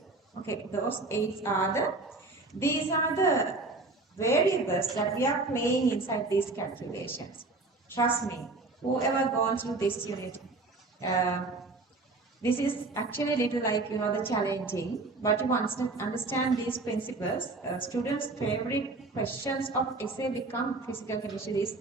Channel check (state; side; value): quieter; left; 3.4 dB